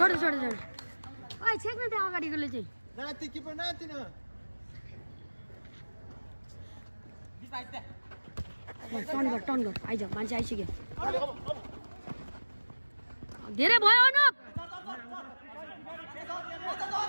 छोड छोड ओइ छेक्न त्यहाँ अगाडिकोले चाहिँ टर्न गर आइज मान्छे आइसक्यो धेरै भयो अनुप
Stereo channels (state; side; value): inverted; both; correlation -1.00